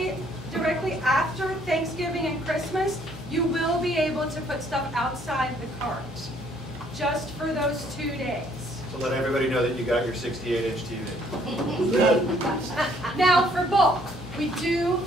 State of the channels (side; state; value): both; normal; correlation 0.64